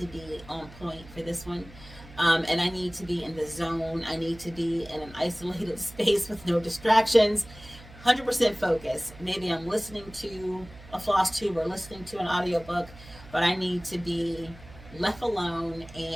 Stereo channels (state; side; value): noise; right; hum, 19 dB below the sound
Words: be on point for this one. And I need to be in the zone. I need to be in an isolated space with no distractions. 100% focus. Maybe I'm listening to a Flosstube or listening to an audiobook, but I need to be left alone